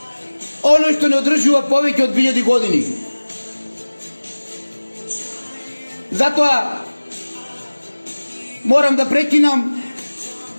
оно што не одржува повеќе од 2000 години. Затоа морам да прекинам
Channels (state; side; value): inverted; both; correlation -1.00